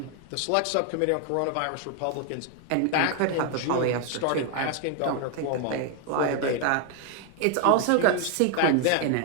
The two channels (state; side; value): different; both; correlation 0.00